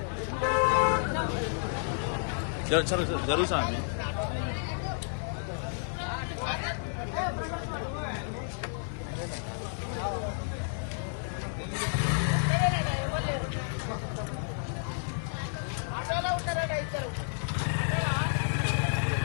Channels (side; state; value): right; silent; 57 dB below the other